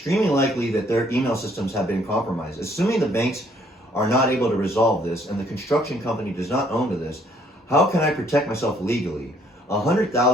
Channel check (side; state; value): both; normal; correlation 0.64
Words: likely that their email systems have been compromised. Assuming the banks are not able to resolve this and the construction company does not own to this, how can I protect myself legally?